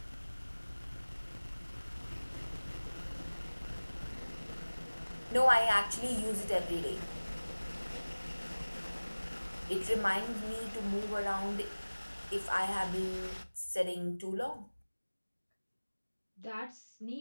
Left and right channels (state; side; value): inverted; both; correlation -1.00